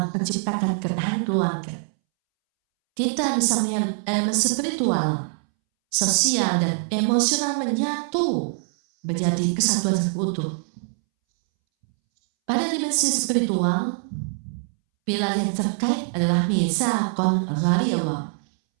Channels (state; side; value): silent; left; 63 dB below the other